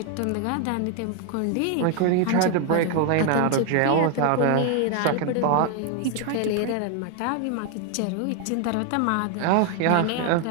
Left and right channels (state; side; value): different; both; correlation 0.00